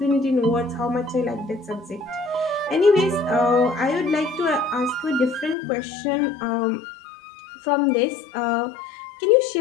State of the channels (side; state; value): right; drops out; at 5.6 s